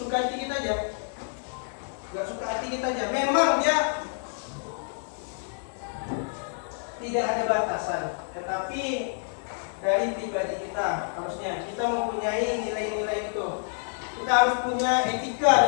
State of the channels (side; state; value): right; silent; digital silence